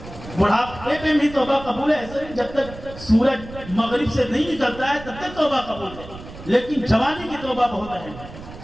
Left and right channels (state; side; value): noise; right; rumble, 15 dB below the sound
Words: بڑھاپے میں بھی توبہ قبول ہے، ایسا نہیں جب تک سورج مغرب سے نہیں نکلتا ہے تب تک توبہ قبول ہے، لیکن جوانی کی توبہ بہت اہم ہے۔